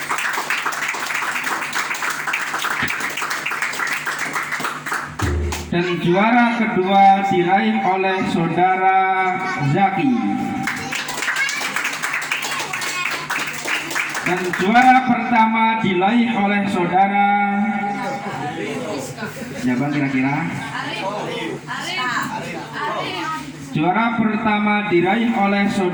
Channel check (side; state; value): both; identical; correlation 1.00